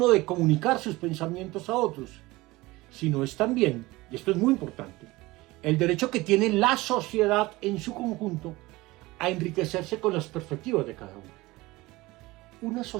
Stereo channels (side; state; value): left; quieter; 20.5 dB